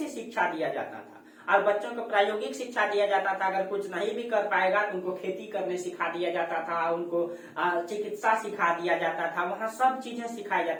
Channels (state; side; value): identical; both; correlation 1.00